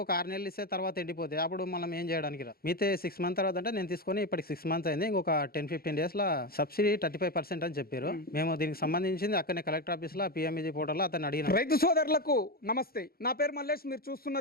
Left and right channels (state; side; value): late; right; 0.44 ms